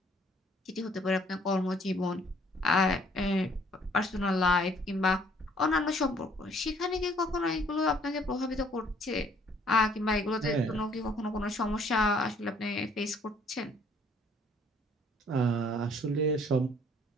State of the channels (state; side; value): normal; both; correlation 0.61